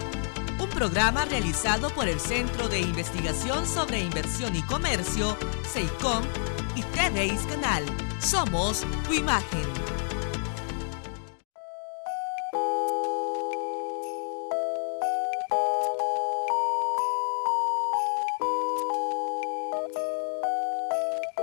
Un programa realizado por el Centro de Investigación sobre Inversión y Comercio, CEICOM, y TVIS Canal. Somos tu imagen.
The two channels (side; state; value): right; silent; digital silence